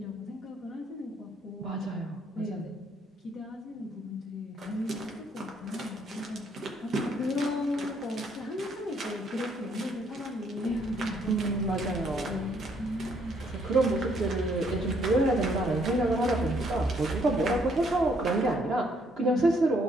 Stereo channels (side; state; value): both; normal; correlation 0.68